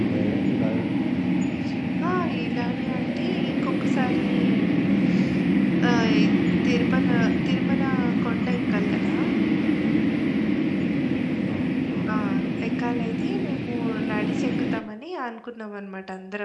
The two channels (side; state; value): both; identical; correlation 1.00